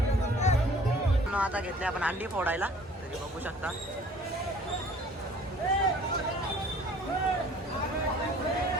आता घेतले आपण अंडी फोडायला. तरी बघू शकता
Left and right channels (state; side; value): normal; both; correlation 0.52